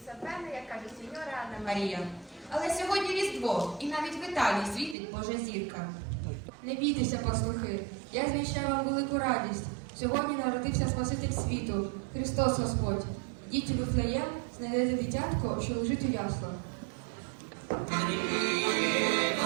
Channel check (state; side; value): drops out; left; at 5.0 s